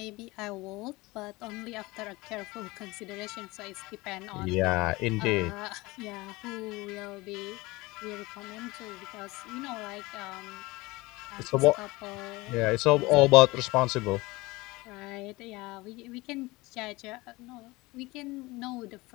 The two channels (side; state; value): right; quieter; 22.0 dB